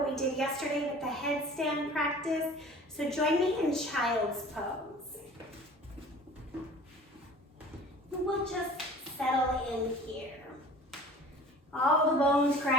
we did yesterday with the headstand practice. So join me in child's pose. We'll just settle in here. All the bones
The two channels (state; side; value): normal; both; correlation 0.45